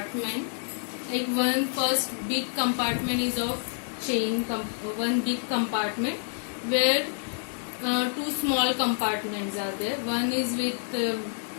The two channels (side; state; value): right; silent; digital silence